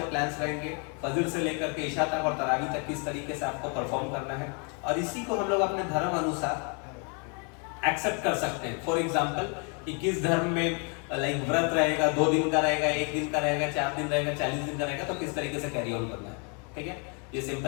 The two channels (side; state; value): right; quieter; 36.5 dB